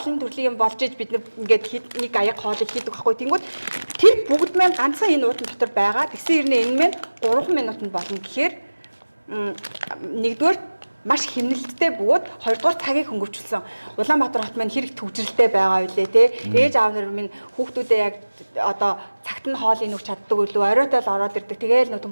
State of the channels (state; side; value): inverted; both; correlation -1.00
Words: төрлийн юм болж иж бид нар ингээд нэг аяг хоолыг хийдэг байхгүй. Тэнгүүд тэр бүгд маань ганцхан энэ уутан дотор байгаа. Тэгсэн хэрнээ энэ маань 3 минутанд болно гэхээр нэгдүгээр маш хэмнэлттэй бөгөөд хоёрдугаар цагийг хөнгөвчлсөн. Улаанбаатар хот маань хэрэг төвжрэлтэй байгаа үлээ те. Ээж аав нар минь хүүхдүүдээ яг одоо цагт нь хоол инүүх чаддаг үлээ оройтой л ороод ирдэг. Тэгээл нөө